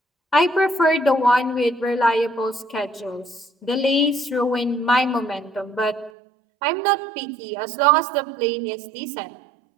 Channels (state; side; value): drops out; left; at 6.1 s